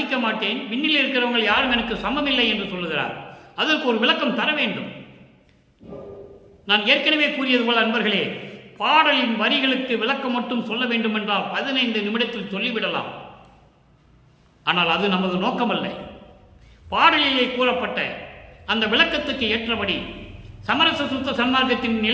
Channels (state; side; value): identical; both; correlation 1.00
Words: மாட்டேன், விண்ணில் இருக்கிறவங்க யாரும் எனக்கு சமமில்லை என்று சொல்லுகிறார். அதற்கு ஒரு விளக்கம் தர வேண்டும். நான் ஏற்கனவே கூறியது போல அன்பர்களே, பாடலின் வரிகளுக்கு விளக்கம் மட்டும் சொல்ல வேண்டும் என்றால் 15 நிமிடத்தில் சொல்லிவிடலாம். ஆனால் அது நமது நோக்கமல்ல. பாடலிலே கூறப்பட்ட அந்த விளக்கத்துக்கு ஏற்றபடி சமரச சுத்த சன்மார்க்கத்தின்